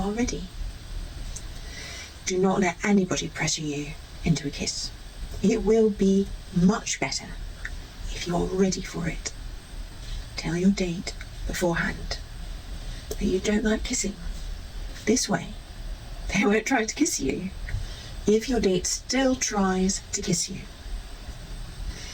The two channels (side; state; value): both; identical; correlation 1.00